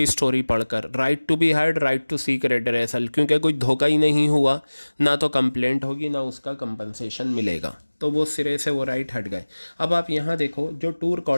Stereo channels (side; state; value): both; inverted; correlation -1.00